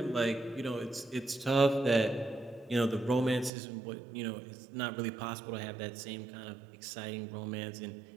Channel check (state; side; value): drops out; left; at 3.5 s